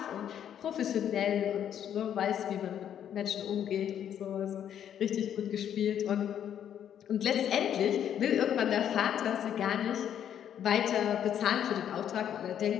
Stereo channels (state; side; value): quieter; right; 9.6 dB